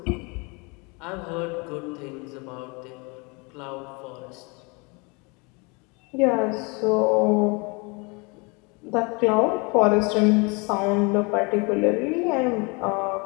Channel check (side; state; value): right; quieter; 29.8 dB